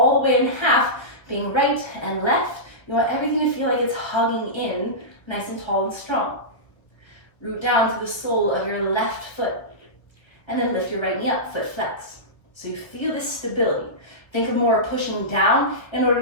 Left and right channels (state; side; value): late; right; 1.1 ms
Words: the way in half, being right and left, you want everything to feel like it's hugging in, nice and tall and strong. Root down to the sole of your left foot, and then lift your right knee up, foot flex. So you feel this stability. Think of more pushing down in